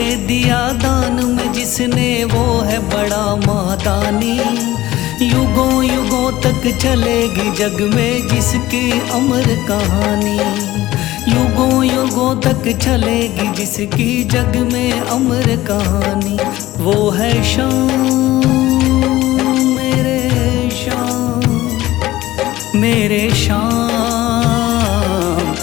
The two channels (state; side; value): quieter; right; 16.2 dB